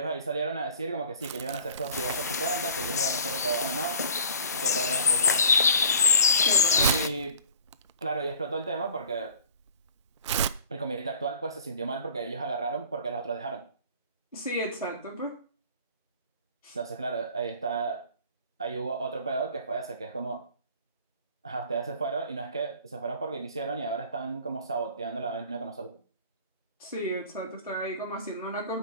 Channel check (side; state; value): both; inverted; correlation -0.46